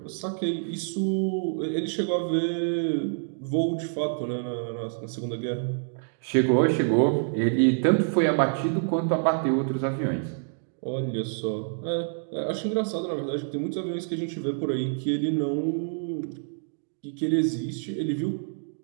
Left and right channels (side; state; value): left; silent; digital silence